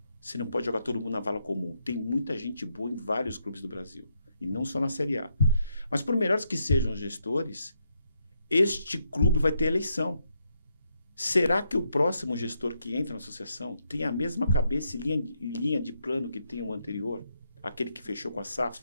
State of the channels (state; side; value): inverted; both; correlation -0.78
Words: você não pode jogar todo mundo na vala comum. Tem muita gente boa em vários clubes do Brasil, e não só na Série A. Mas por melhores que sejam os gestores, este clube vai ter eleição. Será que o próximo gestor que entra na associação tem a mesma cabeça e linha de plano que tem o anterior, aquele que fechou com a SAF?